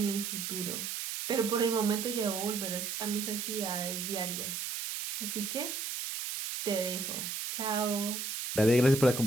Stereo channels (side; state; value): right; noise; hiss, 4 dB below the sound